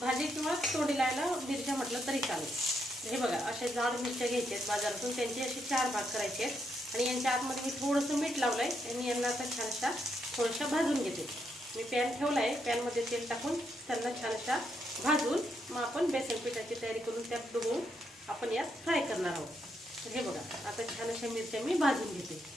किंवा तोंडी लावायला मिरच्या म्हटलं तरी चालेल। हे बघा, अशा जाड मिरच्या घ्यायच्या आहेत बाजारातून, त्यांचे असे 4 भाग करायचे आहेत आणि यांच्या आतमध्ये मी थोडंसं मीठ लावलंय आणि यांना आता छान अशा थोड्याशा भाजून घेते। मी पॅन ठेवलाय, पॅनमध्ये तेल टाकून त्यांना छान अशा भाजून मग आपण बेसन पिठाची तयारी करून त्यात डुबवून आपण यात फ्राय करणार आहोत। हे बघा, आता छान अशा मिरच्या मी भाजून घेते।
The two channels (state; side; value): normal; both; correlation 0.79